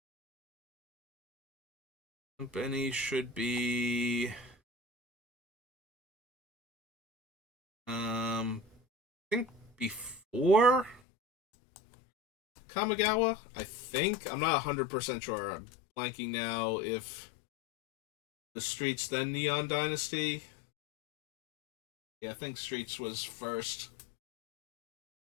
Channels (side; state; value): right; drops out; at 11.0 s